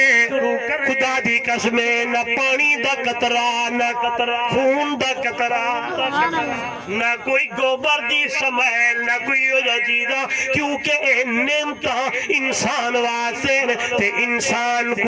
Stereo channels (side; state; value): both; identical; correlation 1.00